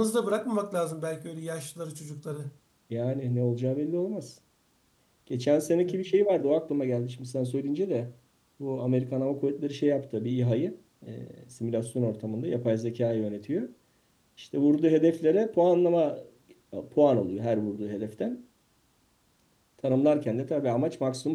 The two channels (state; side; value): identical; both; correlation 1.00